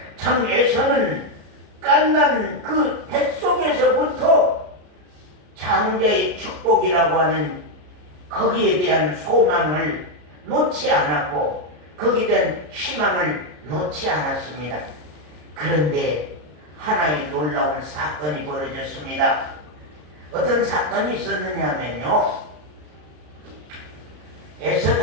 참 에서는 깐난 그 뱃속에서부터 장자의 축복이라고 하는 거기에 대한 소망을 놓지 않았고 거기에 대한 희망을 놓지 않았습니다. 그런데 하나의 놀라운 사건이 벌어졌습니다. 어떤 사건이 있었느냐면요,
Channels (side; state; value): left; late; 33 ms